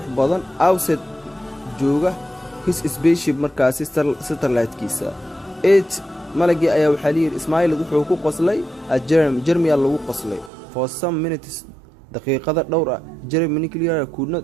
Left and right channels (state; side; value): drops out; left; at 10.5 s